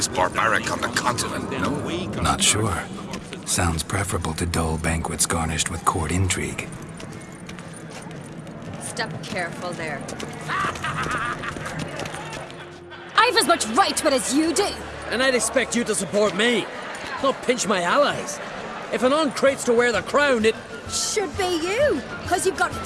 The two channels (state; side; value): identical; both; correlation 1.00